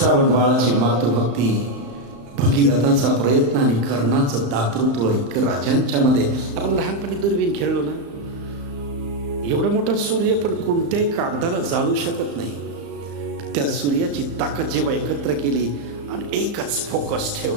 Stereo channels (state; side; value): late; left; 35 ms